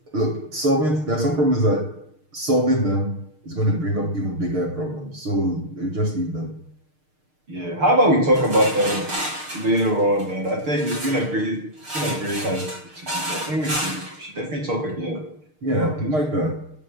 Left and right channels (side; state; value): left; late; 6.6 ms